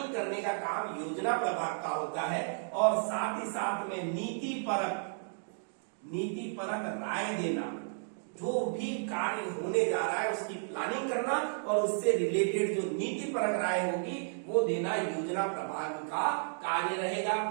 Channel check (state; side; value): silent; left; digital silence